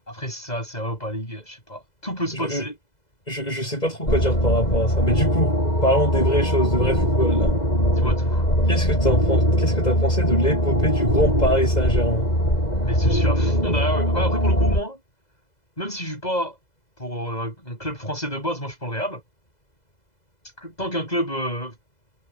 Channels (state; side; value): late; right; 2.0 ms